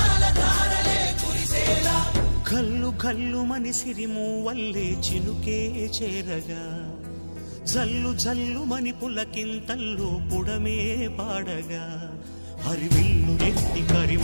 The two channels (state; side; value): inverted; both; correlation -1.00